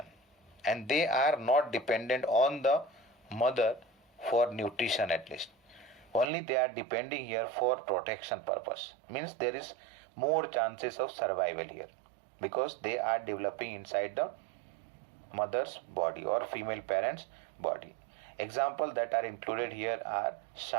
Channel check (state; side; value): drops out; left; at 6.2 s